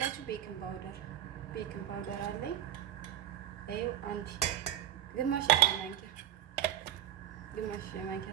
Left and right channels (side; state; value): left; quieter; 11.5 dB